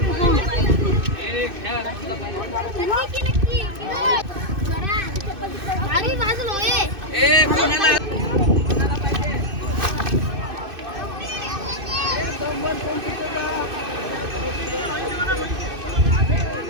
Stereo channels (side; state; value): left; late; 2.6 ms